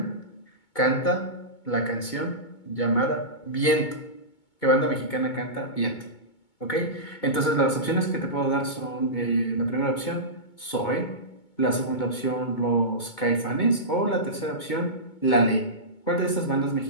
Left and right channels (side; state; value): right; late; 2.2 ms